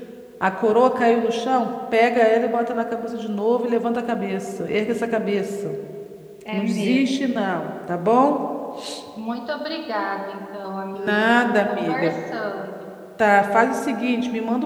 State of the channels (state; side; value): identical; both; correlation 1.00